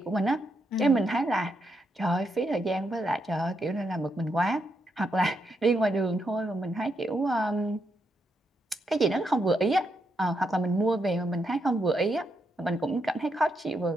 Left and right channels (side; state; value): both; normal; correlation 0.80